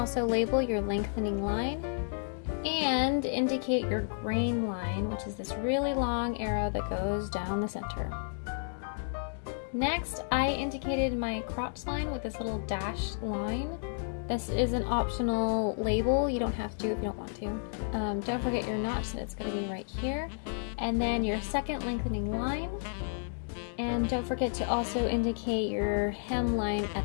label your lengthening line and indicate your grain line, which is this really long arrow that goes down the center. Next, I indicated my crotch line with this little dashed line. This is an optional label. You don't have to if you don't want to. Don't forget your notch, that it's going to be right here. And then your second lengthening line. And don't forget to also indicate your hem line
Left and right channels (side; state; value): right; silent; digital silence